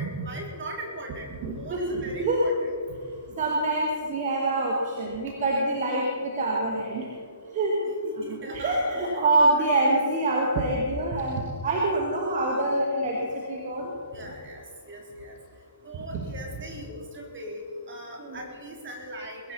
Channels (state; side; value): inverted; both; correlation -0.54